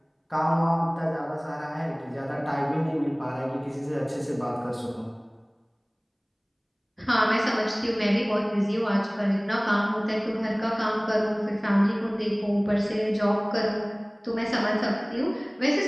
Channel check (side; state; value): both; identical; correlation 1.00